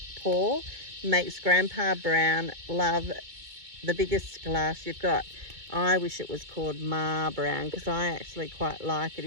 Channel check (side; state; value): left; late; 2.2 ms